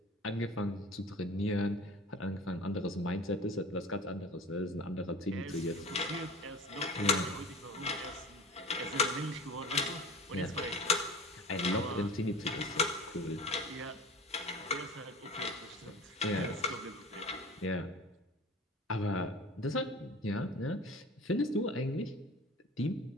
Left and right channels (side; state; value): both; normal; correlation 0.38